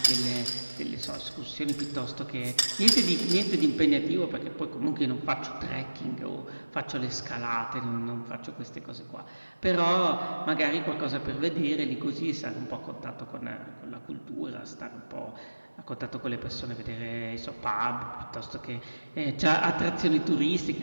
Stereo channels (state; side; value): inverted; both; correlation -1.00